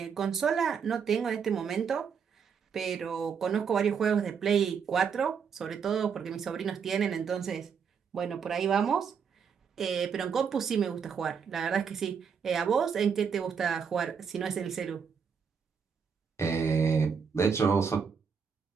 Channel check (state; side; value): quieter; left; 6.5 dB